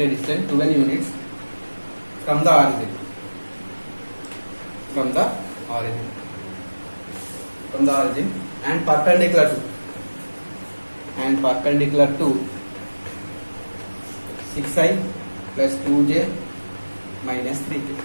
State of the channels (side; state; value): both; inverted; correlation -1.00